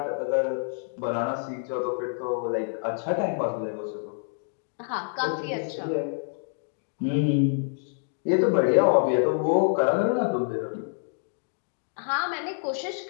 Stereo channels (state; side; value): silent; right; digital silence